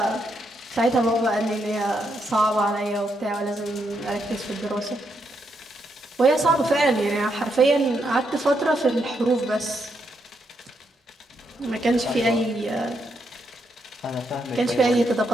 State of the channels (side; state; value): both; normal; correlation 0.79